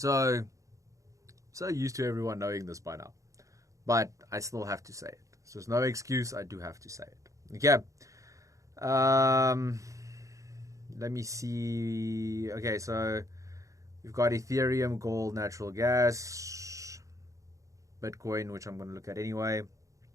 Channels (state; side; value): late; left; 0.16 ms